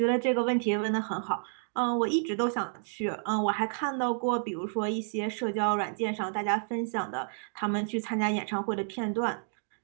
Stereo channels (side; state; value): left; silent; digital silence